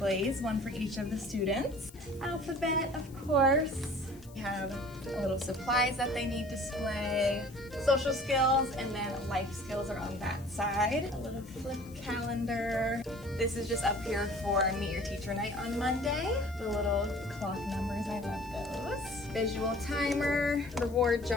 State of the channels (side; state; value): left; noise; hiss, 24 dB below the sound